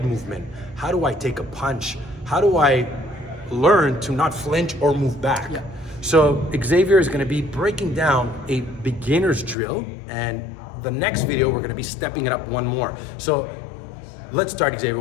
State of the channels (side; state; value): right; drops out; at 9.6 s